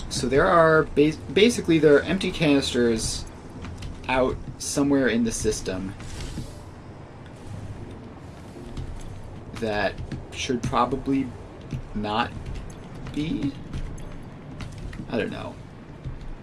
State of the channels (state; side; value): identical; both; correlation 1.00